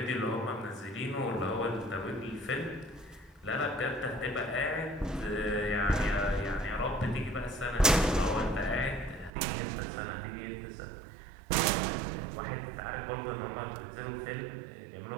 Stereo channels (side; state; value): left; drops out; at 9.3 s